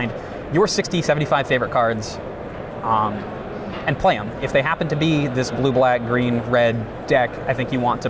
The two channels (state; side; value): identical; both; correlation 1.00